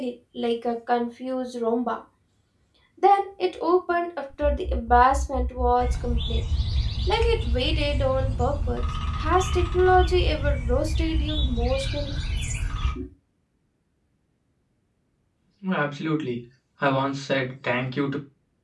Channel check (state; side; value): identical; both; correlation 1.00